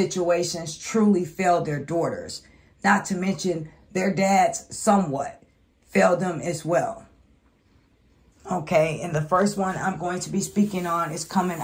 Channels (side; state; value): both; identical; correlation 1.00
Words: truly failed their daughters. Not to mention their dads somewhat failed them as well. Okay, and the first one I'm going to be speaking on is coming